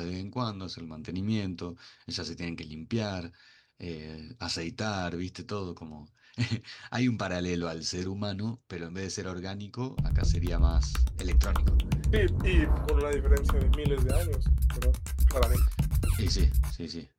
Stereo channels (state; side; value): identical; both; correlation 1.00